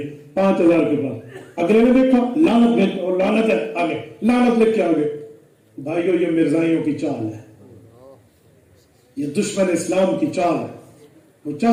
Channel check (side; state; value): both; identical; correlation 1.00